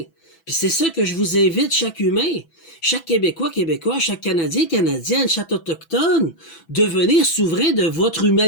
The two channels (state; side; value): late; right; 6.0 ms